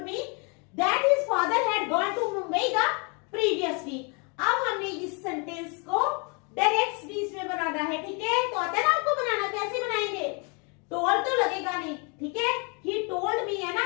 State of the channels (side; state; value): right; quieter; 33.9 dB